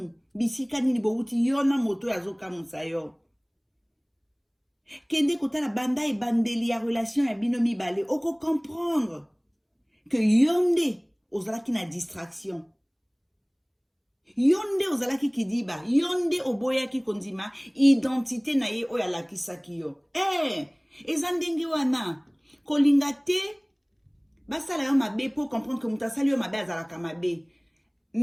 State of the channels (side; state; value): both; identical; correlation 1.00